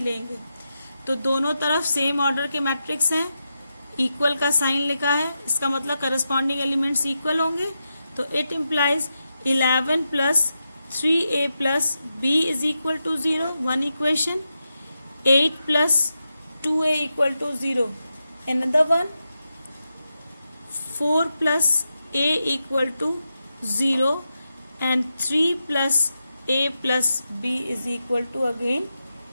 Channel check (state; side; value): inverted; both; correlation -0.88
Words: लेंगे। तो दोनों तरफ सेम ऑर्डर के मैट्रिक्स हैं, इक्वल का साइन लिखा है, इसका मतलब करस्पॉन्डिंग एलिमेंट्स इक्वल होंगे। तो it implies 11 plus 3a plus b is equal to 0, one equation. 8 plus 2a equal to 0, another one। 4 plus a equal to 0 and 3 plus a plus b is equal to again